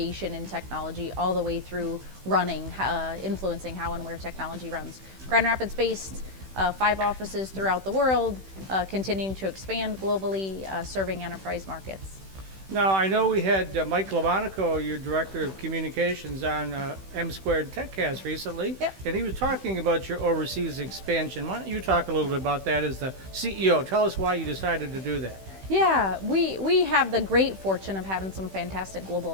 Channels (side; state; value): left; late; 16 ms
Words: in technology, all the way through running, influencing how and where technology runs. Grand Rapids-based, 5 offices throughout the world, continuing to expand globally, serving enterprise markets. Now, I know we had Mike Lamonico, your Director of Communications, on M Squared TechCast recently, Yep. and he was talking about your overseas expansion. Why don't you talk a little bit about that as the CEO? Tell us why you decided to do that. Yeah, we have the great fortune of having some fantastic